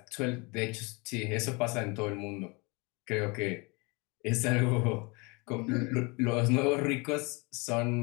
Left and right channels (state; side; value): quieter; right; 28.3 dB